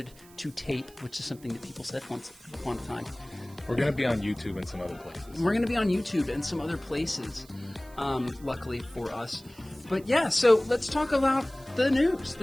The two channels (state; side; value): noise; right; hiss, 24 dB below the sound